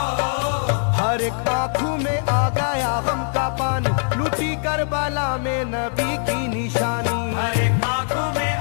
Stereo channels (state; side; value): silent; right; digital silence